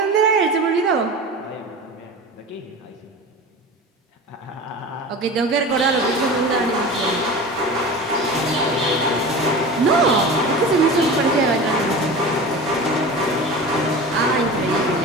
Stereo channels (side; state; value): both; normal; correlation 0.33